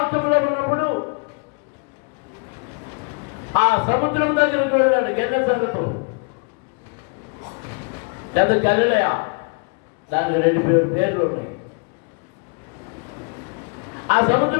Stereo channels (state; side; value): quieter; right; 35.1 dB